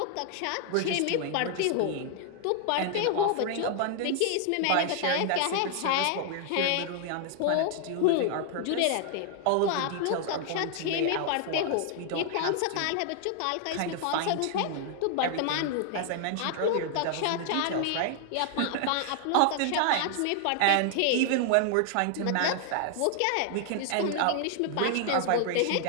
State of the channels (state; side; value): different; both; correlation 0.00